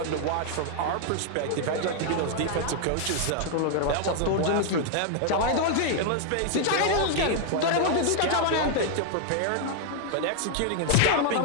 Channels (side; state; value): both; different; correlation 0.00